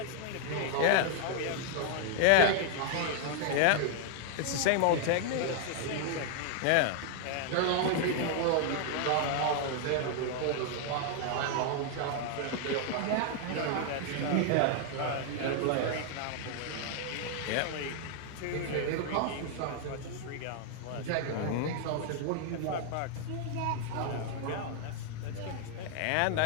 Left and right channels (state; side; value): different; both; correlation 0.00